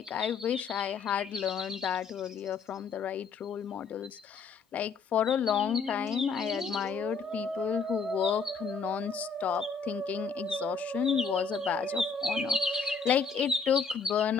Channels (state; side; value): quieter; right; 5.2 dB